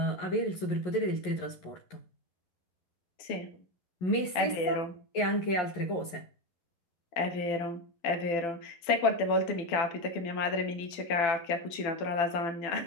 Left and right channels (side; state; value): right; late; 11 ms